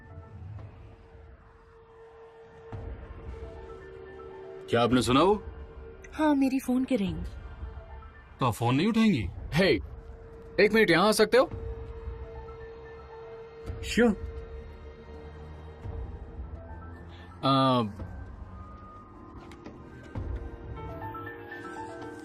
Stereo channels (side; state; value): both; identical; correlation 1.00